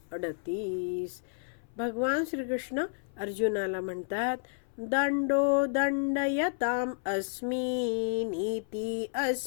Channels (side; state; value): right; silent; 57 dB below the other